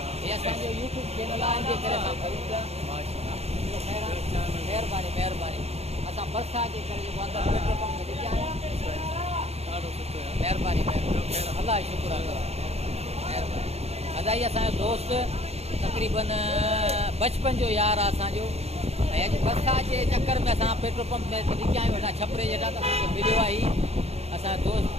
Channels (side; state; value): left; late; 0.30 ms